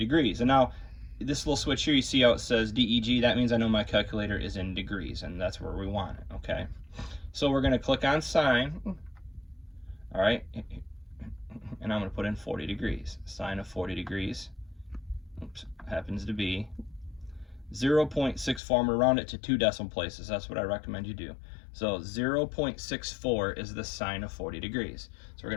And now, this little switch here, you see how it says DEG? That means I know my calculator is in degrees, and that's where we want it, okay? So we're going to click on sine, all right? And I'm going to put in 40 degrees. Sine of 40 degrees, oops, happens to be 0.64. I'm going to round it to 2 decimal places. That's what I recommend you do. So 0.64 is the sine of 40 degrees. So we're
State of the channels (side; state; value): right; drops out; at 18.6 s